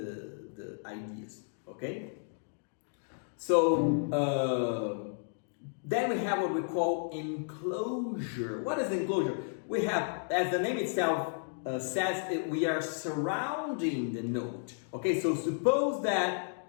ideas, okay? So then we have what we call enclosure. What is enclosure? We have, as the name itself says, we are surrounding the note. Okay, so suppose that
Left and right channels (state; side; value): silent; right; digital silence